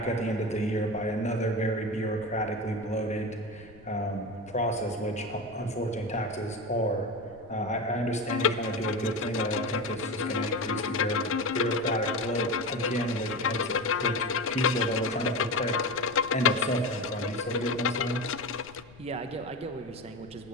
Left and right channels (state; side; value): noise; left; rumble, 22 dB below the sound